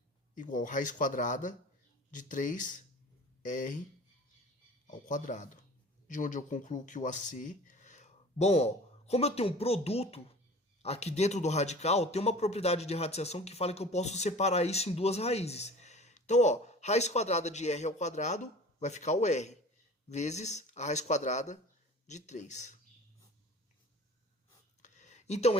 igual a raiz quadrada de 3R ao quadrado. De onde eu concluo que o AC... Bom, ó, como eu tenho um produto aqui dentro do radical, tem uma propriedade de radiação que fala que eu posso separar isso em duas raízes. Então, ó, raiz quadrada de R ao quadrado vai ficar o R, vezes a raiz quadrada de 3. Então,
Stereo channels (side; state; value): both; normal; correlation 0.42